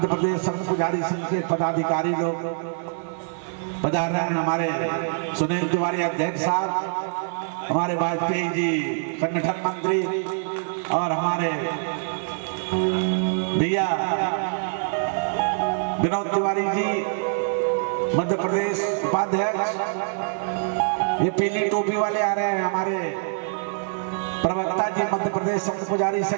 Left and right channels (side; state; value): left; silent; 62 dB below the other